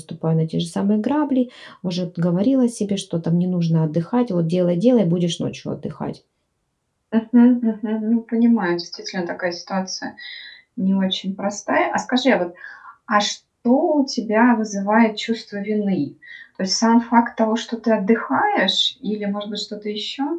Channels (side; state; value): both; identical; correlation 1.00